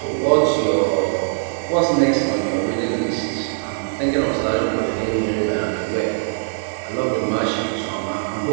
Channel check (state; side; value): silent; left; digital silence